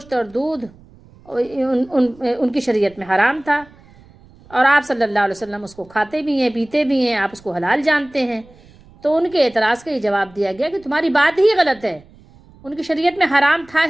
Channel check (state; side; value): noise; right; rumble, 26 dB below the sound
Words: اور دودھ ان کی شریعت میں حرام تھا، اور آپ صلی اللہ علیہ وسلم اس کو کھاتے بھی ہیں، پیتے بھی ہیں، آپ اس کو حلال جانتے ہیں۔ تو ان کے اعتراض کا یہ جواب دیا گیا کہ تمہاری بات ہی غلط ہے، ان کی شریعت میں حرام تھا